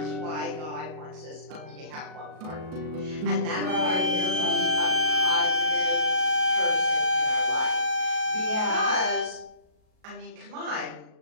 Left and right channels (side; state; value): left; late; 38 ms